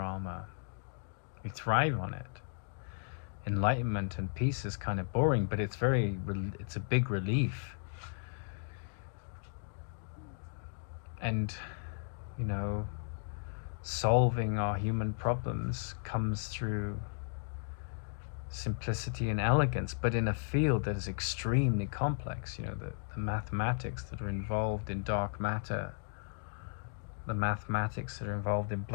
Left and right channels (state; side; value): silent; right; digital silence